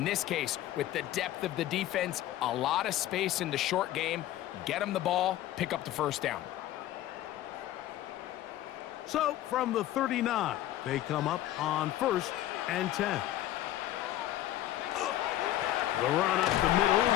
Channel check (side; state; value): right; quieter; 13.8 dB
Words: this case, with the depth of the defense, a lot of space in the short game, get them the ball, pick up the first down. So from the 39, they come up on first and 10. The run up the middle,